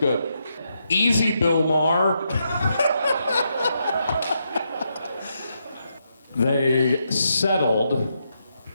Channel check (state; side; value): inverted; both; correlation -0.81